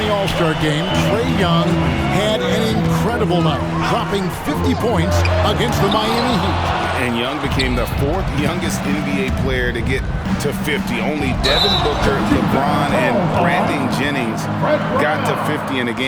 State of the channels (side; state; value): both; identical; correlation 1.00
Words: All-Star game, Trae Young had an incredible night, dropping 50 points against the Miami Heat. And Young became the fourth youngest NBA player to get to 50. Only Devin Booker, LeBron, and Brandon Jennings got to 50 in a